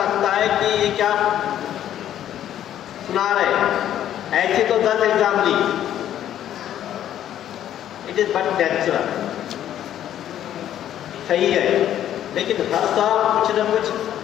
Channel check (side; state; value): right; quieter; 11.2 dB